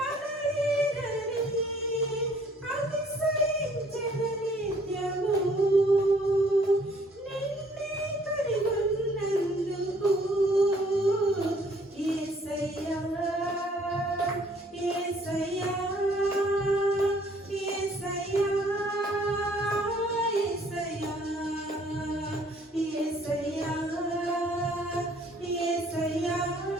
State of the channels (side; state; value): both; normal; correlation 0.60